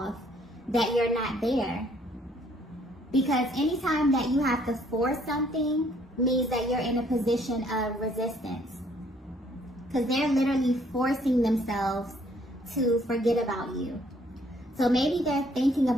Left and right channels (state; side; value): normal; both; correlation 0.64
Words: that you're not there. Because anytime that you have to force something means that you're in a position of resistance. Because they're literally forcing themselves to forget about you. So maybe they're thinking